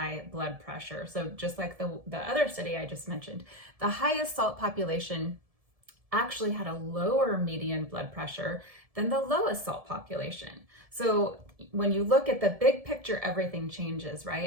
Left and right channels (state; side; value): late; left; 1.7 ms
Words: blood pressure. So just like the other study I just mentioned, the highest salt population actually had a lower median blood pressure than the lowest salt population. So when you look at the big picture, everything changes,